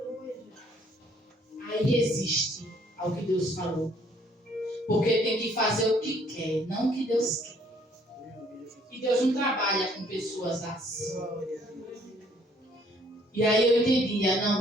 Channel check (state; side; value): normal; both; correlation 0.63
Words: Aí resiste ao que Deus falou. Porque tem que fazer o que quer, não o que Deus quer. E Deus não trabalha com pessoas assim. E aí eu entendia, não,